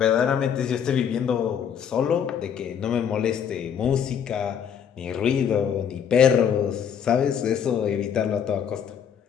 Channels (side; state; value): right; quieter; 8.1 dB